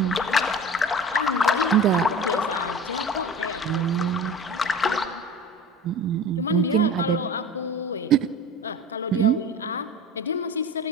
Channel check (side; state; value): both; normal; correlation 0.36